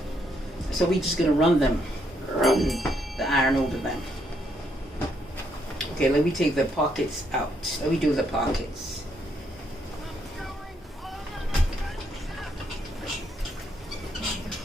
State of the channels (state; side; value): normal; both; correlation 0.74